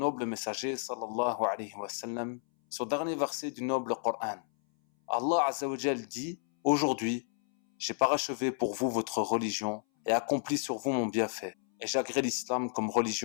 messager sallallahu alayhi wa sallam son dernier verset du noble Coran. Allah Azza wa Jal dit: aujourd'hui, j'ai parachevé pour vous votre religion et accompli sur vous mon bienfait, et j'agrée l'islam comme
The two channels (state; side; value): silent; right; 57 dB below the other